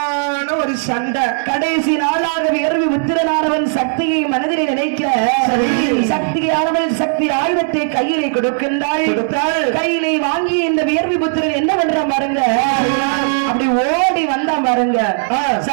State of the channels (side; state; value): left; silent; 68 dB below the other